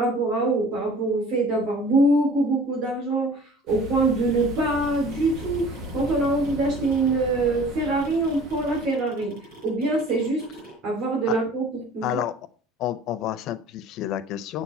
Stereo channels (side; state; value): both; normal; correlation 0.47